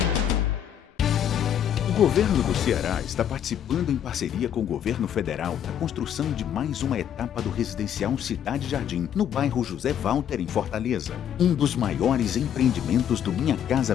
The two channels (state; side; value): quieter; right; 9.5 dB